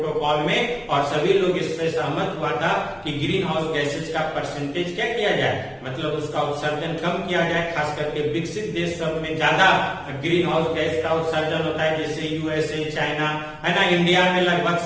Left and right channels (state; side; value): identical; both; correlation 1.00